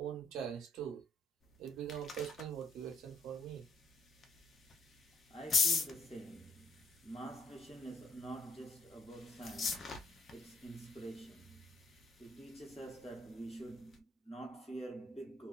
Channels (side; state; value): both; normal; correlation 0.67